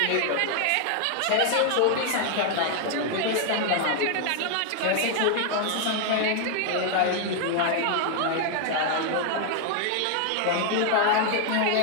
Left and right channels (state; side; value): different; both; correlation 0.00